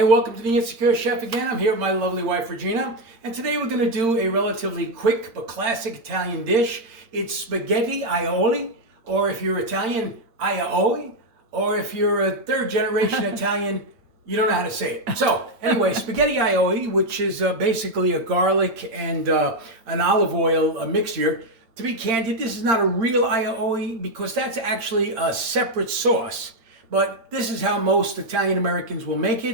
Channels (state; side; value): late; left; 8.8 ms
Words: welcome to the Insecure Chef again. I'm here with my lovely wife Regina, and today we're going to do a relatively quick but classic Italian dish. It's spaghetti aioli, or if you're Italian, aioli, or if you're a third generation Italian, you don't know how to say it. So anyway, spaghetti aioli, which is basically a garlic and an olive oil mixture. To be candid, this is not a real aioli because that's actually a separate sauce. But this is how most Italian Americans will make